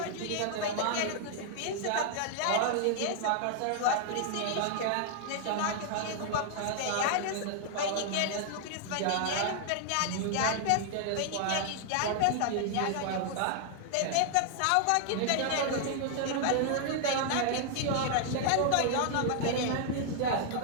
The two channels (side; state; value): both; different; correlation 0.00